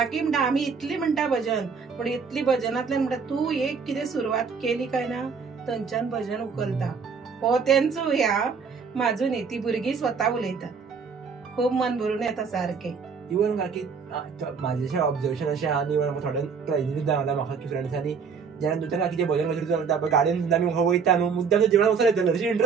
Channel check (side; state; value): left; quieter; 5.7 dB